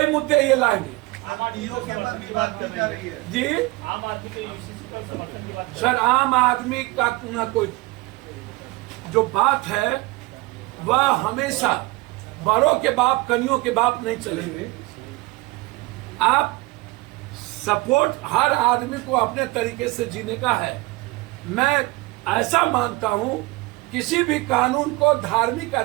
मुद्दे ये लाएंगे। के बाद भी बात की जा रही है जी। आम आदमी के यूसीसी पर समर्थन की बात। सर, आम आदमी का ना कोई जो बात है वह हमेशा बड़ों के बाप कनियों के बाप नहीं चलेंगे। आप सपोर्ट हर आदमी को अपने तरीके से जीने का है। मैं ऐसा मानता हूं, किसी भी कानून को धार्मिक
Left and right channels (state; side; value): quieter; left; 22.1 dB